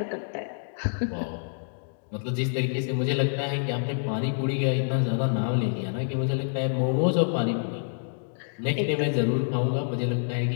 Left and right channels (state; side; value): silent; right; digital silence